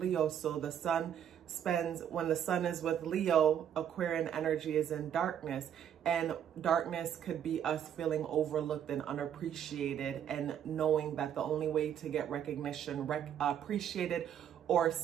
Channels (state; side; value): quieter; left; 9.3 dB